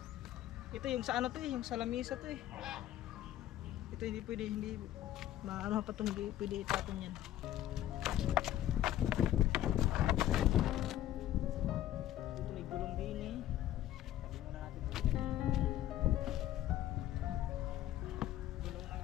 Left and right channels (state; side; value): quieter; right; 12.9 dB